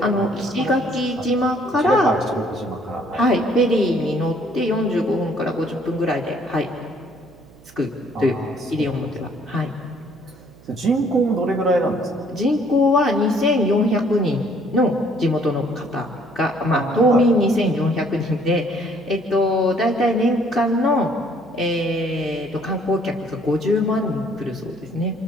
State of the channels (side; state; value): right; noise; hum, 24 dB below the sound